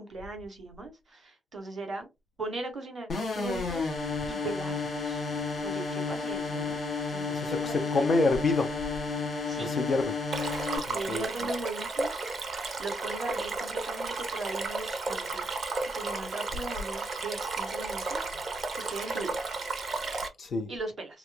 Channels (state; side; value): normal; both; correlation 0.73